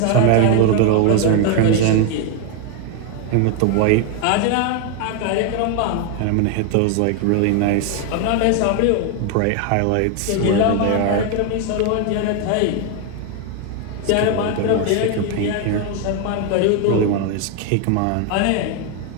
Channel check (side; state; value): both; different; correlation 0.01